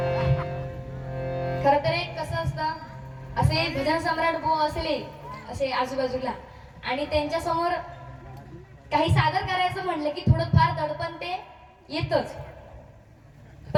खर तर एक कसं असतं असे भजन सम्राट बुवा असले असे आजूबाजूला आणि त्यांच्या समोर काही सादर करायचं म्हणलं की थोडं फार दडपण ते येतच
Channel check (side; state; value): both; identical; correlation 1.00